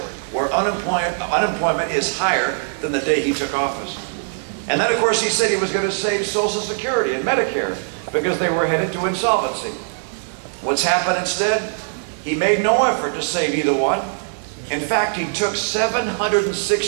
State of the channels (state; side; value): silent; left; digital silence